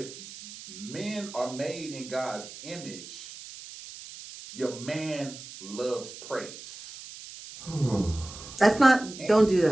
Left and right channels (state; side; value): noise; right; hiss, 14 dB below the sound